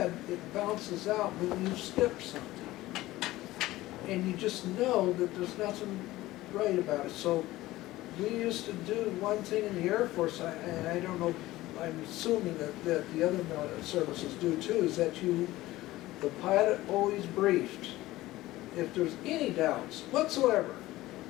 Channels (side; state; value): right; quieter; 17.2 dB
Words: it bounces out when you skip something. And you just know that there's nothing right about it. So we used to do one thing in the Air Force, and I don't know, I'm assuming that the other services do too, is that the pilot always briefed. If there's any doubts whatsoever,